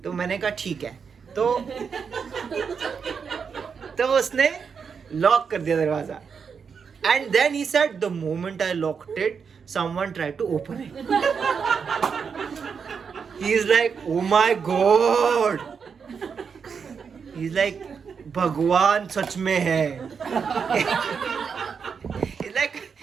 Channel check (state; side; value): quieter; left; 6.2 dB